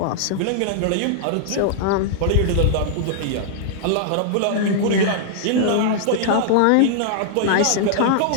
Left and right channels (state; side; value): different; both; correlation -0.01